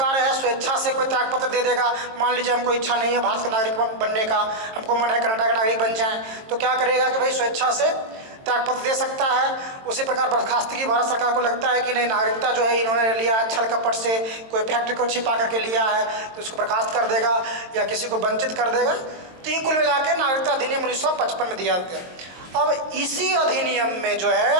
है स्वेच्छा से कोई त्यागपत्र दे देगा। मान लीजिए हमको इच्छा नहीं है भारत का नागरिक बनने का, हमको मन है कनाडा का नागरिक बन जाए, तो क्या करेगा कि भाई स्वेच्छा से त्यागपत्र दे सकता है। उसी प्रकार बर्खास्तगी भारत सरकार को लगता है कि नहीं नागरिकता जो है इन्होंने लिया है छल कपट से, कोई फैक्ट्री को छिपा करके लिया है तो उसको बर्खास्त कर देगा या किसी को वंचित कर देगा। तो ये कुल मिला के नागरिकता अधिनियम 1955 में दिया गया। अब इसी अधिनियम में जो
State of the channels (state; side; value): late; left; 22 ms